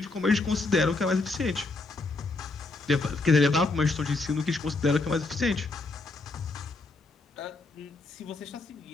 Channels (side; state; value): right; quieter; 3.4 dB